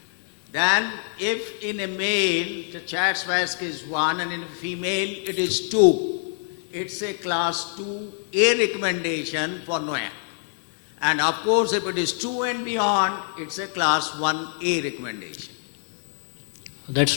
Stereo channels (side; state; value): right; silent; digital silence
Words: Then if in a male the CHA2DS2-VASc is 1 and in a female it is 2, it's a class 2A recommendation for NOAC. And of course if it is 2 and beyond, it's a class 1A recommendation. That's